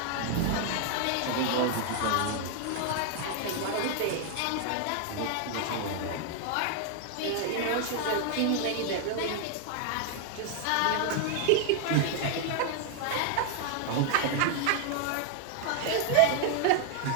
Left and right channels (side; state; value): both; different; correlation 0.00